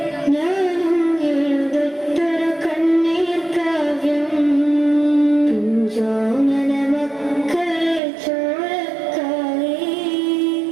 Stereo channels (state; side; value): drops out; left; at 8.0 s